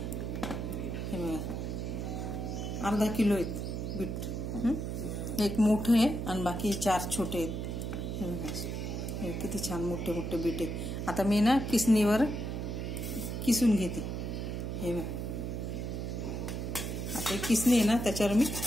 बघा, अर्धा किलो आहेत बीट। एक मोठं आहे आणि बाकी 4 छोटे आहेत। हे बघा, हे किती छान मोठे मोठे बीट आहेत। आता मी ना किसणीवर किसून घेते। हे बघा, आता किसणी आहे ना, त्याच्यावर मी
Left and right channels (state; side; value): noise; right; hum, 3 dB below the sound